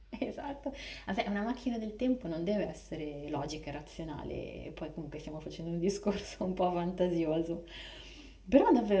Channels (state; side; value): identical; both; correlation 1.00